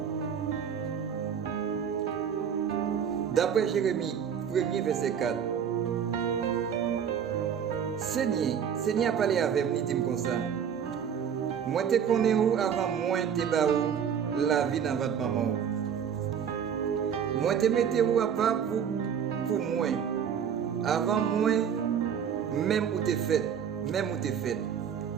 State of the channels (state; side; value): quieter; left; 7.9 dB